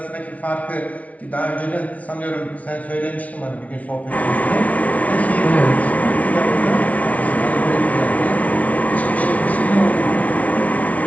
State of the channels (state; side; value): late; right; 0.068 ms